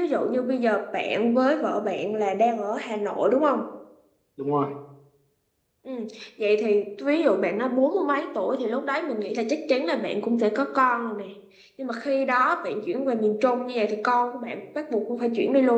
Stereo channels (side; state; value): both; identical; correlation 1.00